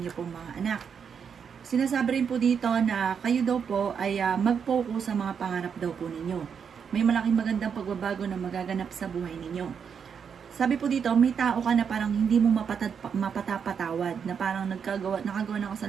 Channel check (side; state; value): left; quieter; 6.9 dB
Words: pong mga anak. Sinasabi rin po dito na kayo daw po ay mag-focus sa mga pangarap daw po ninyo. May malaking magandang pagbabago na magaganap sa buhay ninyo. Sabi po dito, may tao ka na parang hindi mo mapatapatawad, na parang nakagawa ng